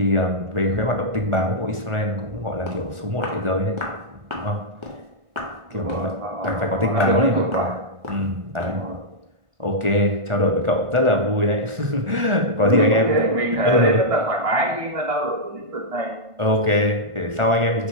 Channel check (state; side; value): late; left; 1.4 ms